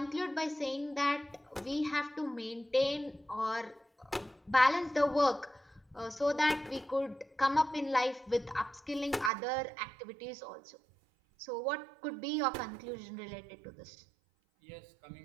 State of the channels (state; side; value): drops out; left; at 9.3 s